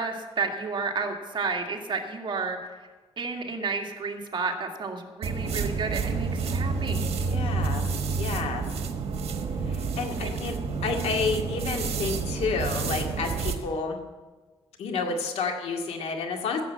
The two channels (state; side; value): normal; both; correlation 0.39